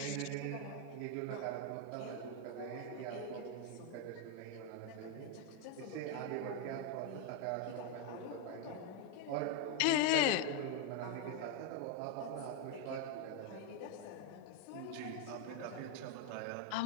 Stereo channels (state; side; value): different; both; correlation 0.01